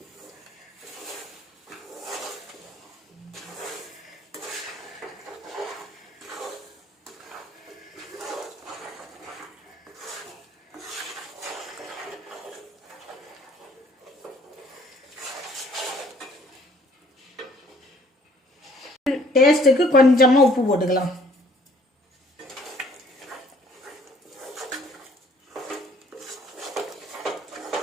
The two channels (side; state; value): both; normal; correlation 0.59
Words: டேஸ்ட்டுக்கு கொஞ்சமாக உப்பு போட்டுக்கலாம்.